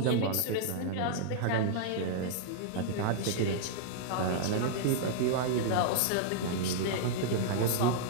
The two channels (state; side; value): different; both; correlation -0.01